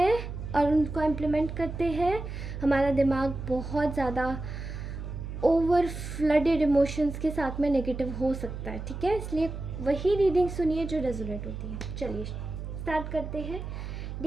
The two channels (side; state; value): right; noise; hum, 7 dB below the sound